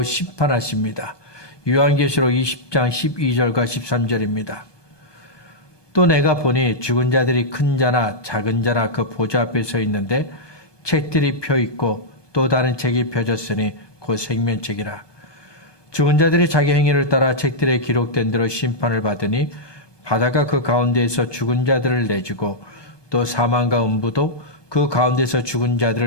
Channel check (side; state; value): right; late; 1.2 ms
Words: 심판하십니다. 요한계시록 20장 12절과 13절입니다. 또 내가 보니 죽은 자들이 큰 자나 작은 자나 그 보좌 앞에 서 있는데 책들이 펴 있고 또 다른 책이 펴졌으니 곧 생명책이라. 죽은 자들이 자기 행위를 따라 책들에 기록된 대로 심판을 받으니 바다가 그 가운데에서 죽은 자들을 내주고 또 사망과 음부도 그 가운데서 죽은